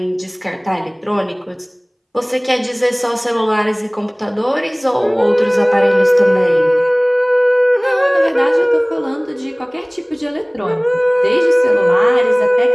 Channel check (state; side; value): identical; both; correlation 1.00